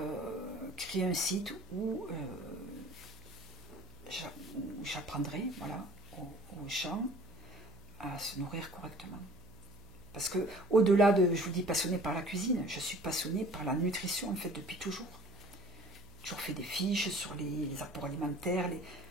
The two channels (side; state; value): right; noise; hum, 20 dB below the sound